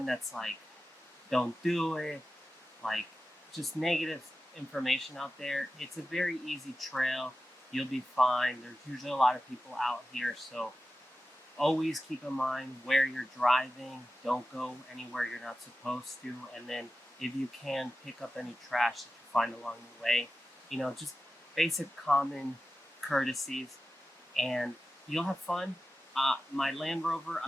that's like, don't do it, like just negative information out there. It's a very easy trail. You'll be fine. There's usually a lot of people out here, so always keep in mind where you're driving. Don't go anywhere you're not supposed to. And then if you can, pick up any trash that you find along the way. Just basic common courtesies. And you'll have fun. My Land Rover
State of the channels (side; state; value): both; normal; correlation 0.94